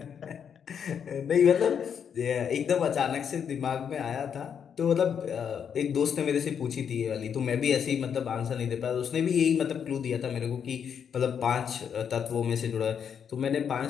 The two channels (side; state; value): right; quieter; 7.7 dB